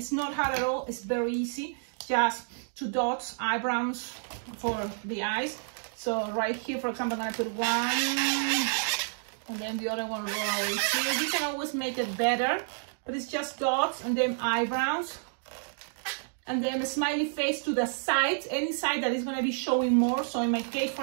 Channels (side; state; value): left; silent; digital silence